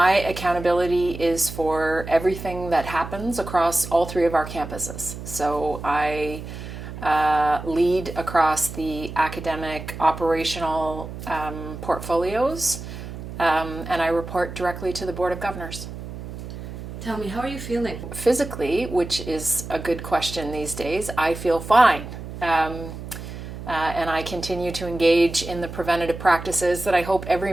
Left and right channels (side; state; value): right; noise; hum, 10 dB below the sound